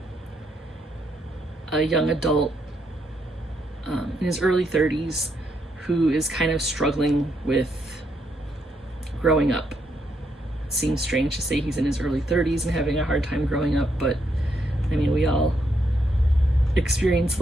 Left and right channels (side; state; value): both; normal; correlation 0.77